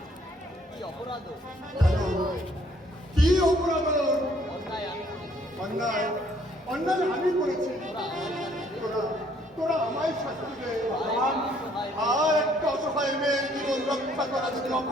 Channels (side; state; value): both; normal; correlation 0.63